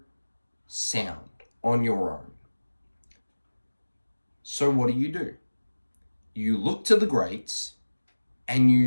sound on your own. So what do? You look to the greats and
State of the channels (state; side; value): inverted; both; correlation -1.00